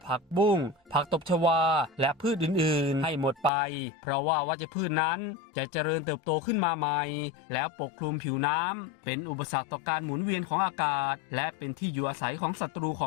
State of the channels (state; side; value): drops out; right; at 3.5 s